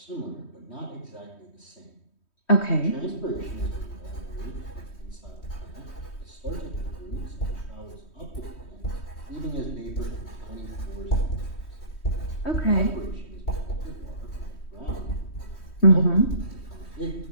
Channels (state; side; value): late; right; 3.2 ms